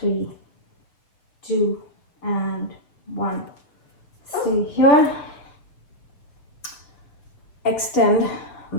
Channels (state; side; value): late; right; 6.9 ms